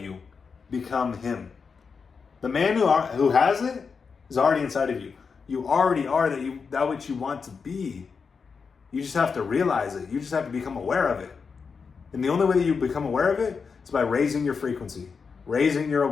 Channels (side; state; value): right; quieter; 5.4 dB